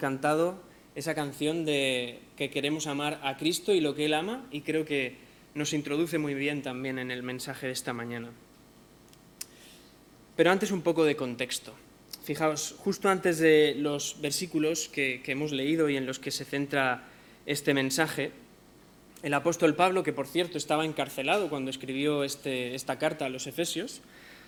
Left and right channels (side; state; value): both; identical; correlation 1.00